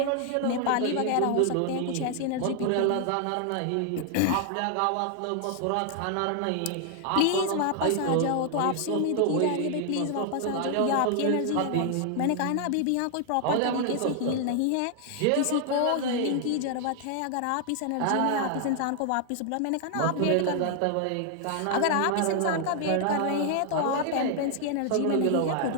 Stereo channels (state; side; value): different; both; correlation 0.00